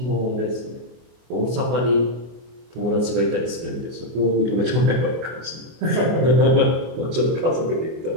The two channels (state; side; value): late; left; 24 ms